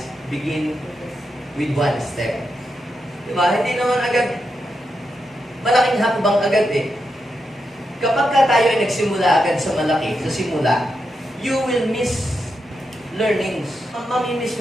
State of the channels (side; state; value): both; normal; correlation 0.85